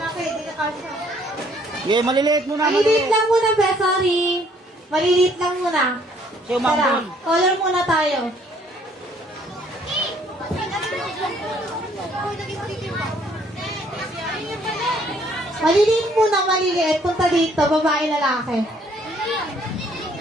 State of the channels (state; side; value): normal; both; correlation 0.63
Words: hindi na kasya. Yeah, maliliit muna. Maliliit lang muna, be, sorry. Maliliit lang muna. Sa'yo, Mangbun. Tara, color muna tayo. Maliliit muna, maliliit. Punta dito, babae, lalaki.